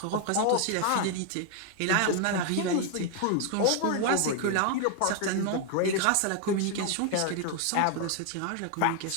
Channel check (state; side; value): different; both; correlation 0.00